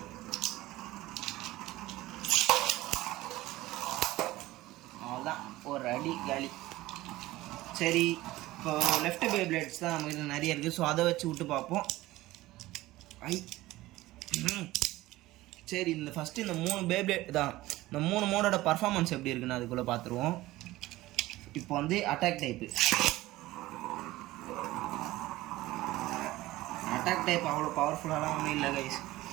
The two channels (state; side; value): quieter; left; 17.6 dB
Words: அவ்வளோதான், ஒரு அடி காலி. சரி, இப்போ லெஃப்ட் பேப்ளேட்ஸ் தான் நம்மகிட்ட நிறைய இருக்குது. ஸோ அதை வச்சு விட்டு பார்ப்போம். சரி, இந்த ஃபஸ்ட்டு இந்த 3 பேப்ளேட் தான், இந்த 3 மோடோட பர்ஃபார்மன்ஸ் எப்படி இருக்குன்னு அதுக்குள்ளே பார்த்துருவோம். இப்போ வந்து அட்டாக் டைப்பு. அட்டாக் டைப் அவ்வளோ பவர்ஃபுல்லாலாம் ஒன்றும் இல்லை கைஸ்.